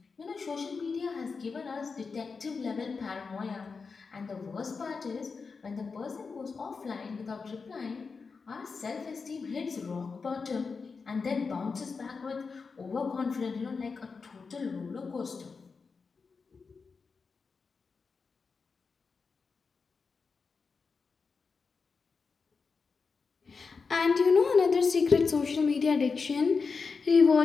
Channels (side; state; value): right; quieter; 4.9 dB